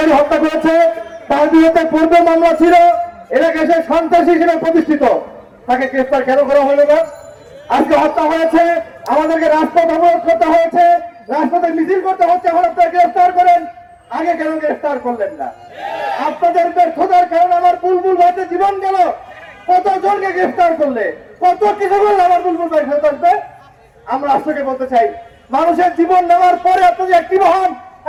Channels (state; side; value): identical; both; correlation 1.00